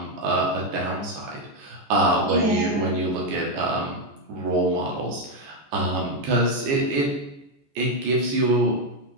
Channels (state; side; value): late; left; 14 ms